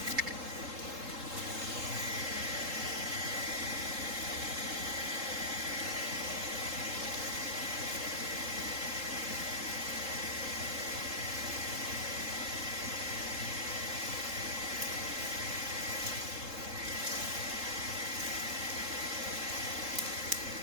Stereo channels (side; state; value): left; late; 3.7 ms